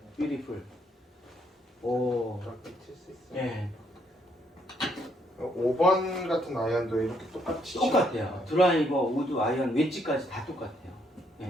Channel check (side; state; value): both; normal; correlation 0.71